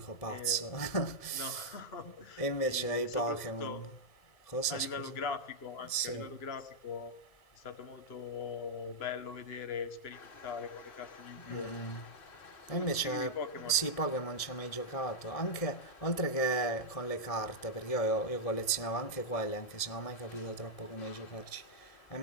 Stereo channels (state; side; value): late; right; 1.7 ms